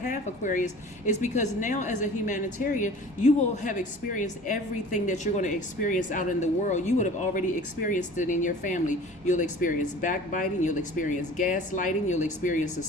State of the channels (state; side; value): noise; right; rumble, 27 dB below the sound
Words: Aquarius, is because now as a humanitarian, you will have experienced everything that you're going to experience out in the world. You would have already experienced it in your family. You'll experience backbiting, you'll experience gaslighting, you'll experience a